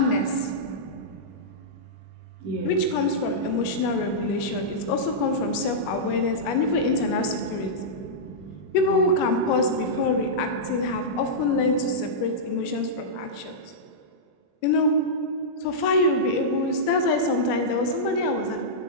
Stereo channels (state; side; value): late; right; 21 ms